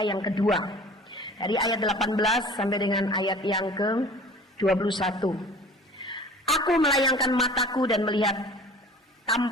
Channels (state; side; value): normal; both; correlation 0.45